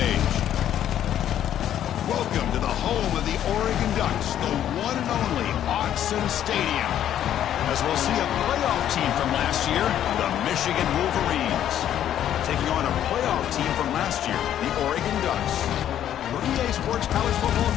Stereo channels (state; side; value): quieter; right; 10.8 dB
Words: Welcome to the home of the Oregon Ducks, the one and only Autzen Stadium. As we'll see a playoff team from last year, the Michigan Wolverines, taking on a playoff team from last year, the Oregon Ducks. For EA Sports College Football,